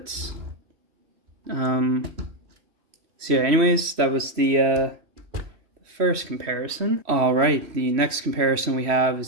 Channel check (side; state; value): left; late; 3.1 ms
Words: So yeah, anyways, that was the first comparison. Alright, the next comparison we have